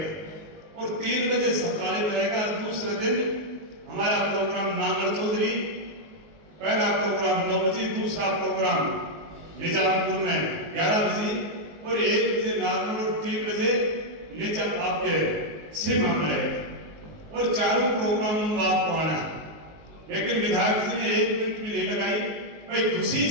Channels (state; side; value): late; left; 19 ms